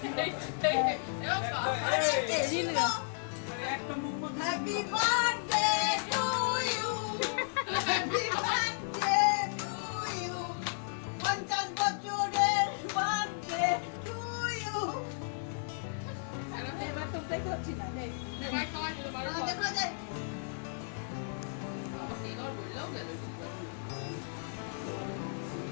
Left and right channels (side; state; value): right; silent; 55 dB below the other